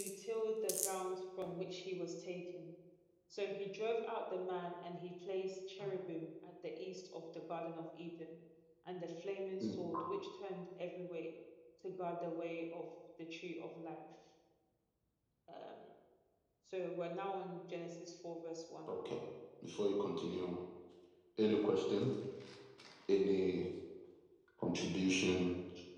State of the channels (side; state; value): both; identical; correlation 1.00